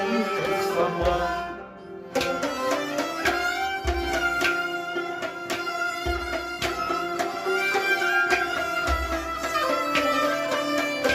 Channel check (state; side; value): identical; both; correlation 1.00